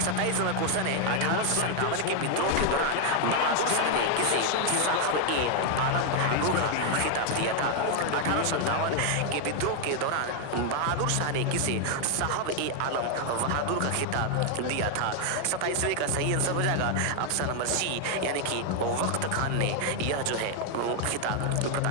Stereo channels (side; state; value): both; different; correlation 0.01